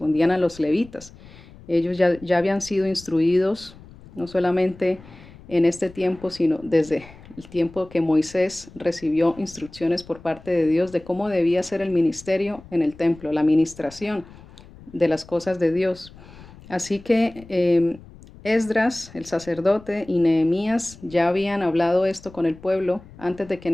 a los levitas. Ellos ya habían sido instruidos, no solamente en este tiempo, sino desde el tiempo que Moisés recibió instrucciones por parte de Dios de cómo debía ser el ministerio en el templo, la administración de las cosas de Dios. Así que Esdras, el sacerdote, y Nehemías ya habían hablado esto con el pueblo antes de que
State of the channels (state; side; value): noise; left; rumble, 21 dB below the sound